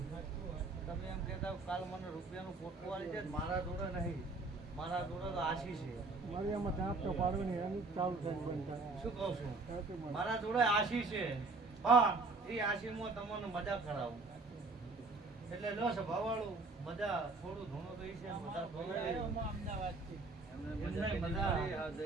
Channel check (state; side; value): quieter; left; 3.6 dB